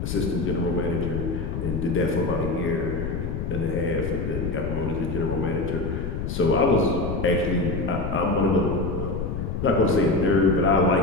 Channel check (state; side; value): noise; left; rumble, 4 dB below the sound